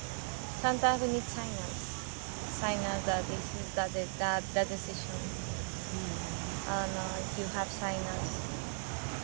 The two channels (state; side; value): silent; left; 53 dB below the other